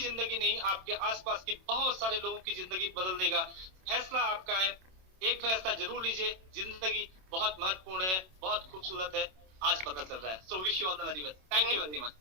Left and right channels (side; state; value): left; late; 27 ms